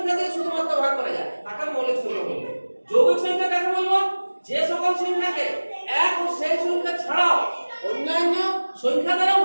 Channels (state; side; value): inverted; both; correlation -1.00